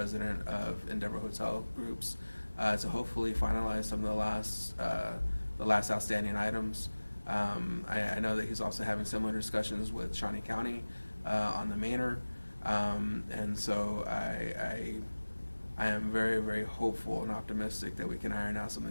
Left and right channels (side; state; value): both; inverted; correlation -1.00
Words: of Endeavor Hotel Groups, to hopefully finalize some of the last outstanding items. I know that he's also having similar discussions with Shawnee County on the Manor, and so I am very hopeful and optimistic that we can iron out some